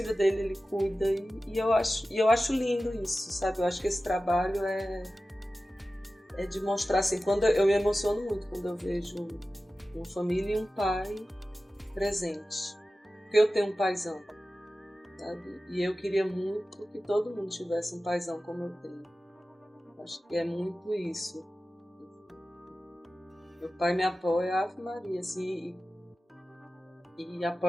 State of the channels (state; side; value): normal; both; correlation 0.95